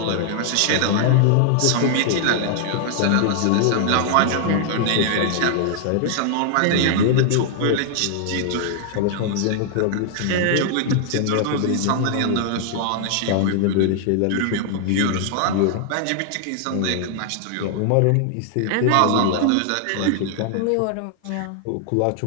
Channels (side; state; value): both; different; correlation 0.00